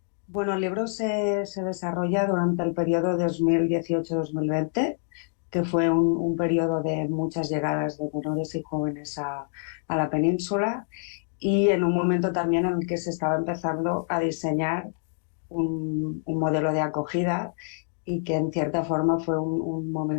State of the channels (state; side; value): silent; right; digital silence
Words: Bueno, el libro se desarrolla durante el periodo 2018-2020, que fue un periodo de muchas llegadas de menores y jóvenes a la península, y en un momento también en el que se estaba empezando a diseñar un modelo de acogida y que en cierta forma fue un